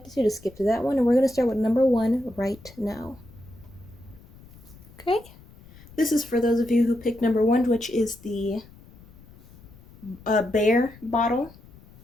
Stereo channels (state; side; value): noise; left; rumble, 22 dB below the sound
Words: to, just skip to that one, and we're going to start with number 1 right now. Okay? This is for those of you who picked number 1, which is the Bear bottle,